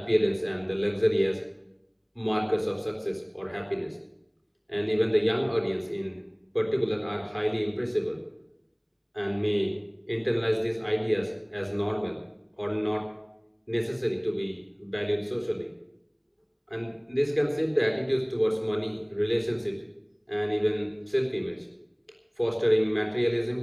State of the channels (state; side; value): identical; both; correlation 1.00